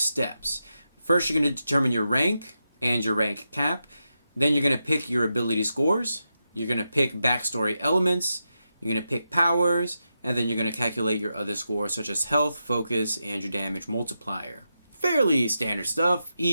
First, you're going to determine your rank and your rank cap. Then you're going to pick your ability scores. You're going to pick backstory elements, you're going to pick powers, and then you're going to calculate your other scores such as health, focus, and your damage multiplier. Fairly standard stuff,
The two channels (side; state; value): both; inverted; correlation -0.87